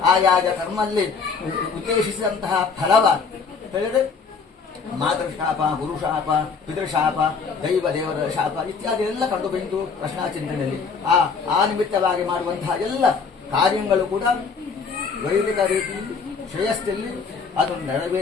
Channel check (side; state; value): right; quieter; 5.2 dB